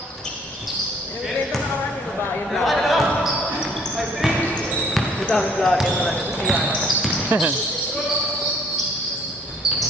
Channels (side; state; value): both; normal; correlation 0.60